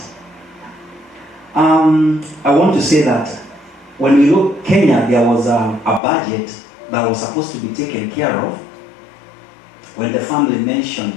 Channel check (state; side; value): drops out; right; at 6.0 s